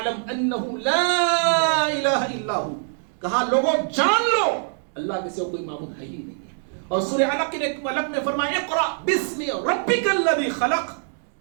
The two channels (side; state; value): left; silent; digital silence